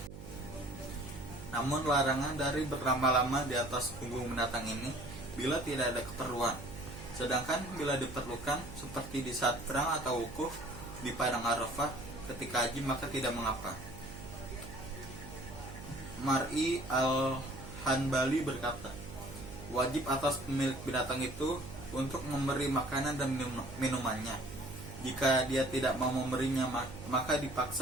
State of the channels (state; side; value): noise; right; hum, 12 dB below the sound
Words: Namun larangan dari berlama-lama di atas punggung binatang ini bila tidak ada keperluan. Sedangkan bila diperlukan seperti di saat perang atau wukuf di padang Arafah ketika haji, maka tidak mengapa. Mar'i al-Hanbali berkata, wajib atas pemilik binatang itu untuk memberi makanan dan minumannya. Jika dia tidak mau memberinya, maka